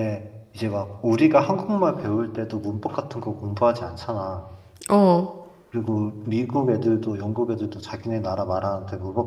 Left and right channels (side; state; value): both; identical; correlation 1.00